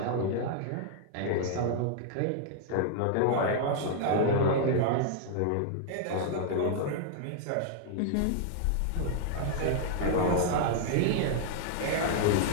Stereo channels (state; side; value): different; both; correlation -0.01